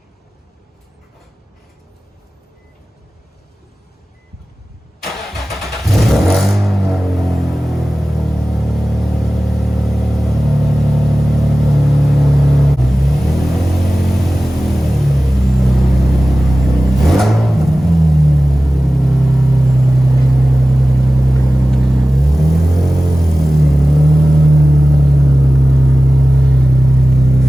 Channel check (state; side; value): normal; both; correlation 0.96